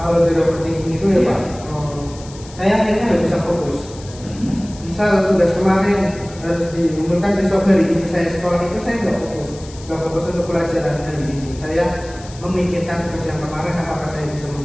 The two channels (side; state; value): left; noise; hiss, 19 dB below the sound